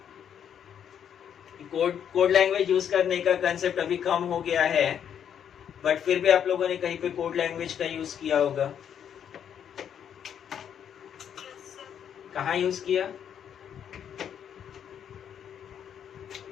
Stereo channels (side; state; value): right; quieter; 8.7 dB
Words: कोड लैंग्वेज यूज करने का कंसेप्ट अभी कम हो गया है, बट फिर भी आप लोगों ने कहीं पे कोड लैंग्वेज का यूज किया होगा। कहाँ यूज किया?